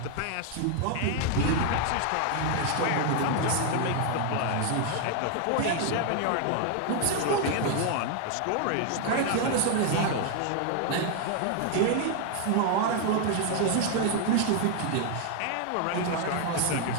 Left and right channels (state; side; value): different; both; correlation 0.00